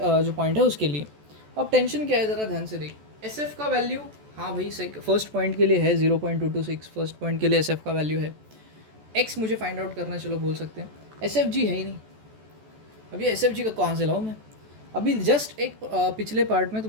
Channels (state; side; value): late; left; 14 ms